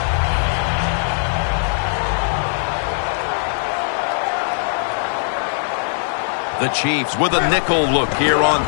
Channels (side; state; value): right; silent; 66 dB below the other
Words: The Chiefs with a nickel look here on